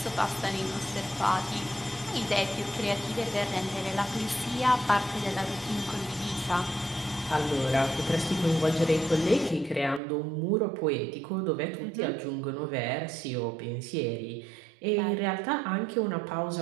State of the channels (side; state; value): left; drops out; at 10.0 s